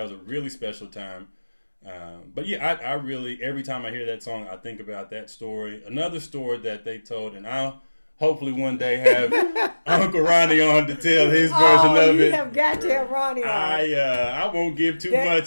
was a really special time. But yeah, I really every time I hear that song, I think about that story. Another story that they told, and I'll hopefully one day have Uncle Ronnie on to tell his version of you it. have got to have Ronnie on. I won't give too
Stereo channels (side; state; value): both; inverted; correlation -1.00